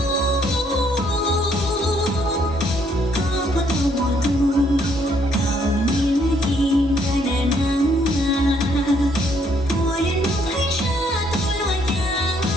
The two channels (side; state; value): both; normal; correlation 0.69